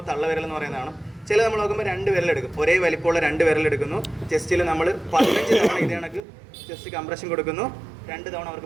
തള്ളവിരൽ എന്ന് പറയുന്നതാണ്. ചില നമ്മൾ നോക്കുമ്പോൾ 2 വിരലെടുക്കും, ഒരേ വലിപ്പമുള്ള 2 വിരലെടുക്കുന്നു. ചെസ്റ്റിൽ നമ്മൾ 15 തവണ ഇത് കണക്ക് ചെസ്റ്റ് കംപ്രഷൻ കൊടുക്കുന്നു, 2 തവണ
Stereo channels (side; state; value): left; drops out; at 6.2 s